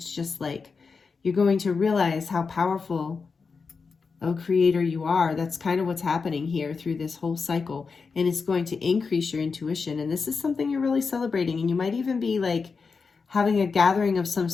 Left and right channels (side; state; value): right; quieter; 5.0 dB